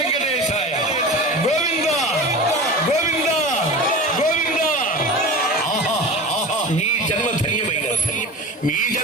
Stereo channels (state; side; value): normal; both; correlation 0.32